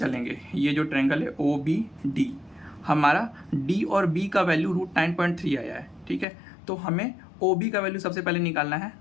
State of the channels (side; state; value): right; drops out; at 6.2 s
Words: ये जो ट्रायंगल है ओ बी डी, हमारा डी और बी का वैल्यू रूट 9.3 आया है, ठीक है। तो हमें ओ बी का वैल्यू सबसे पहले निकालना है।